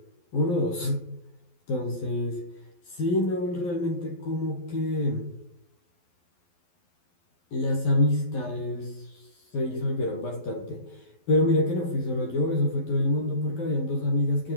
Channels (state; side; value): late; right; 12 ms